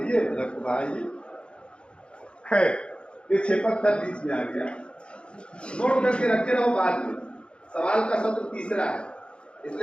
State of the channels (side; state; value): right; late; 0.056 ms